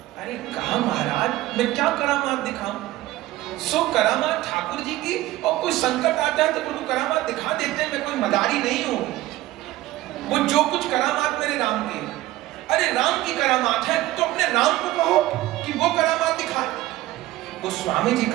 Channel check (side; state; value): left; quieter; 16.5 dB